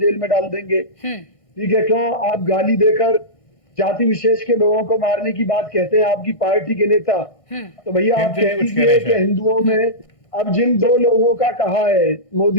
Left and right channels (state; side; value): late; right; 1.6 ms